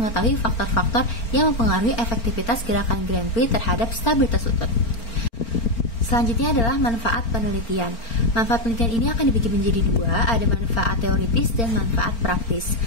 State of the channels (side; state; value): right; late; 4.4 ms